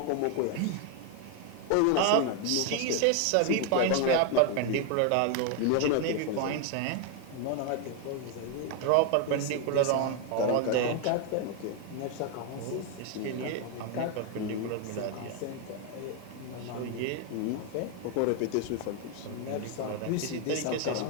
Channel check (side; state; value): both; different; correlation 0.01